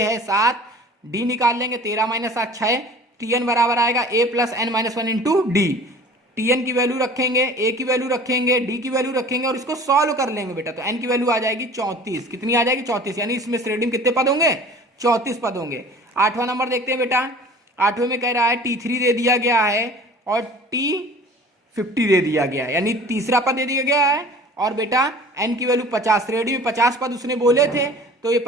7, d निकाल लेंगे 13 - 7 6, tn बराबर आएगा a plus n minus 1 into D. tn की वैल्यू रखेंगे, a की वैल्यू रखेंगे, d की वैल्यू रखेंगे और इसको सॉल्व कर लेंगे बेटा। तो n की वैल्यू आ जाएगी 34, कितनी आ जाएगी 34, यानी इसमें श्रेणी में कितने पद होंगे 34 पद होंगे। 8वां नंबर देखते हैं बेटा, 8वें में कह रहा है t3 दे दिया गया है और t50 दे दिया गया है, यानी तीसरा पद दे दिया गया है और बेटा n की वैल्यू 50, श्रेणी में 50 पद उसने बोले थे तो ये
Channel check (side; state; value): both; normal; correlation 0.44